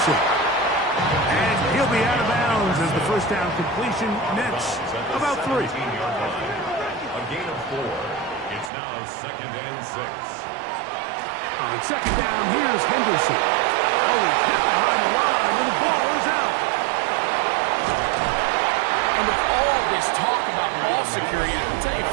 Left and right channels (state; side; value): drops out; left; at 8.7 s